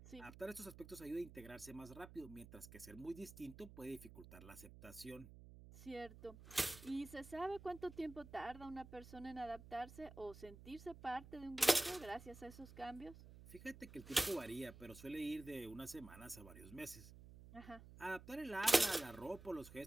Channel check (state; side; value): noise; right; hum, 16 dB below the sound